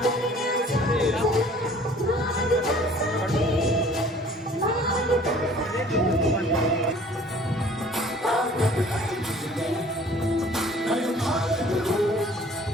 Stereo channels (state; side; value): normal; both; correlation 0.52